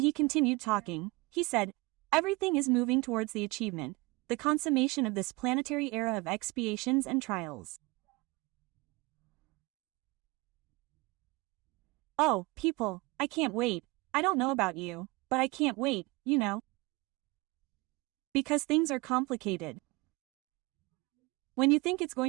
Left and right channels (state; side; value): quieter; left; 24.3 dB